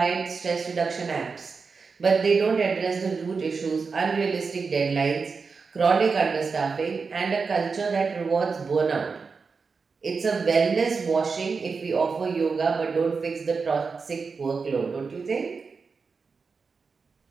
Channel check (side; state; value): left; quieter; 4.9 dB